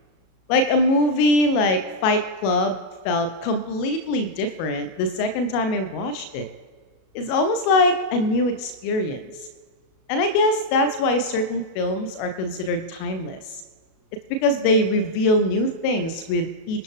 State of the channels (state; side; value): late; right; 37 ms